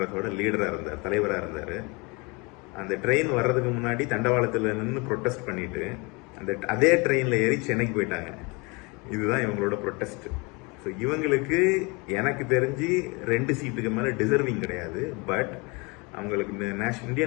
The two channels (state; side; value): quieter; right; 28.4 dB